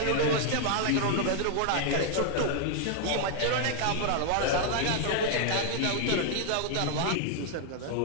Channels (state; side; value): different; both; correlation 0.00